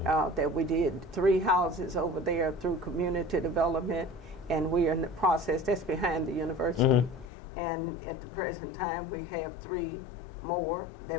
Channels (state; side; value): drops out; right; at 7.2 s